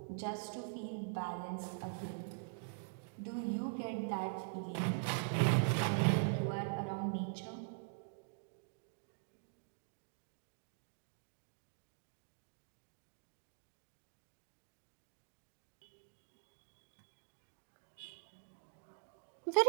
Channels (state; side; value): silent; left; digital silence